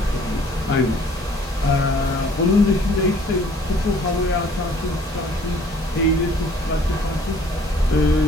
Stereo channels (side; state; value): both; normal; correlation 0.57